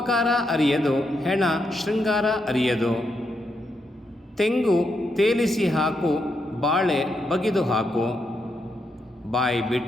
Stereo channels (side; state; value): both; normal; correlation 0.81